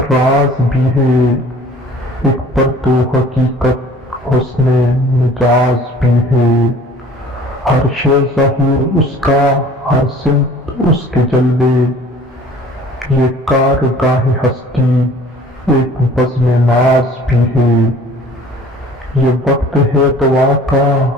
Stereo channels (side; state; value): both; normal; correlation 0.49